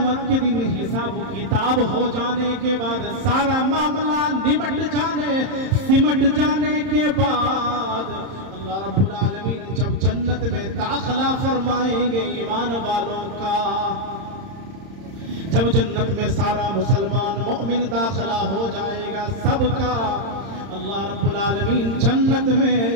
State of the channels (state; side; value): late; left; 30 ms